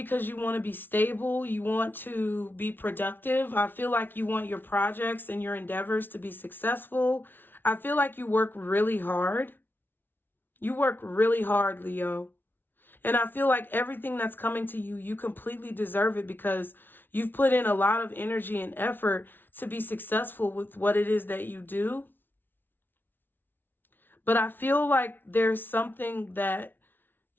you want to be stable. You want to be productive. I feel like you want your projects and your endeavors to be successful. I feel like you work really hard. You work really hard, Leo. And I feel like everything that's coming to you, you completely deserve it because you've put in a lot of energy and effort to be successful with what it is that you do. But I feel like there's something that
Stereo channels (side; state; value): right; late; 0.098 ms